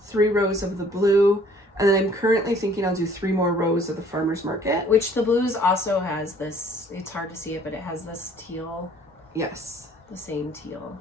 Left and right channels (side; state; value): both; normal; correlation 0.57